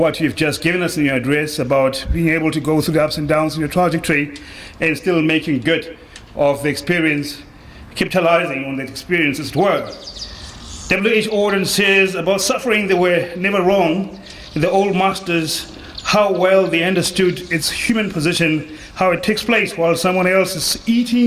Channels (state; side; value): identical; both; correlation 1.00